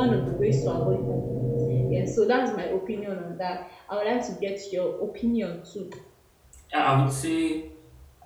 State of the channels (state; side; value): identical; both; correlation 1.00